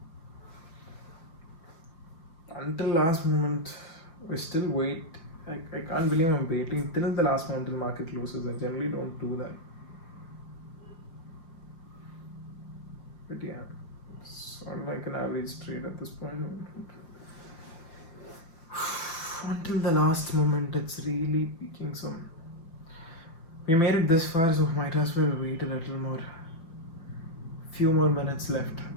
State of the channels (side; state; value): right; late; 5.9 ms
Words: Until last moment, we still wait. I can't believe I'm waiting till the last moment till market closes. I generally don't do that. But yeah, it's sort of like an average trade at this point. Until the last moment, it's really peaking some. We made it this far, so might as well wait a little more. Few more minutes left.